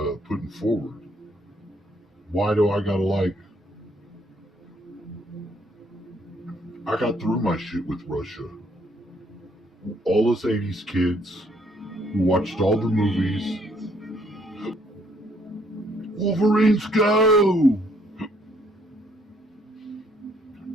putting forward. Why do I gotta I got through my shit with Russia. All us 80s kids who watched all the movies. Wolverines go!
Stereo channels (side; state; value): both; normal; correlation 0.67